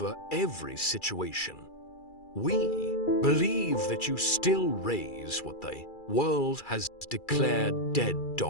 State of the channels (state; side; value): late; right; 2.3 ms